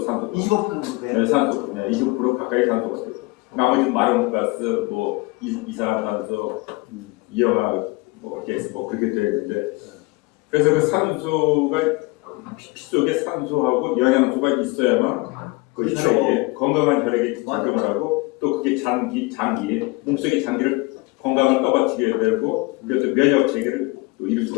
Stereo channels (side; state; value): right; quieter; 23.8 dB